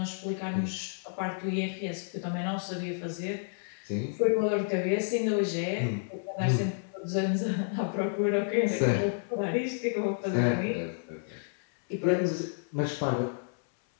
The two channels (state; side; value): silent; right; 58 dB below the other